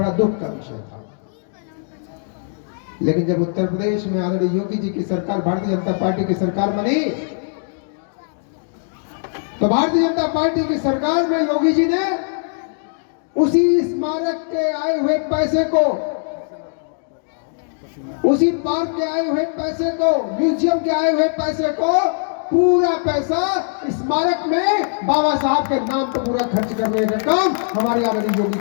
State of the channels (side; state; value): right; silent; digital silence